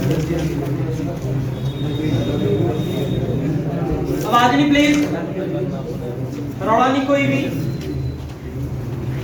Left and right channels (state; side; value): identical; both; correlation 1.00